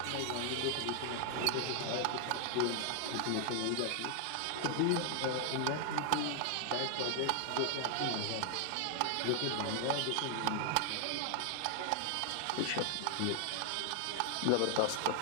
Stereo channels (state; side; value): different; both; correlation 0.00